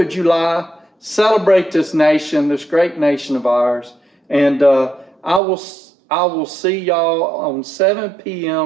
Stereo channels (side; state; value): left; drops out; at 5.4 s